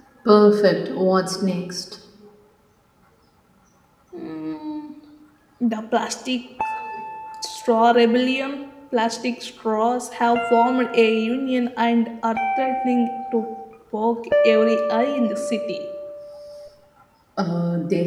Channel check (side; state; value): both; identical; correlation 1.00